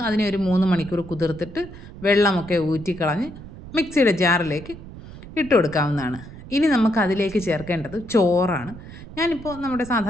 അതിനെ ഒരു 3 മണിക്കൂർ കുതിർത്തിട്ട് വെള്ളമൊക്കെ ഊറ്റിക്കളഞ്ഞ് മിക്സിയുടെ ജാറിലേക്ക് ഇട്ട് കൊടുക്കാവുന്നതാണ്. ഇനി നമുക്ക് അതിലേക്ക് ചേർക്കേണ്ടത് ചോറാണ്. ഞാനിപ്പോൾ നമ്മുടെ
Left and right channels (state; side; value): noise; right; rumble, 15 dB below the sound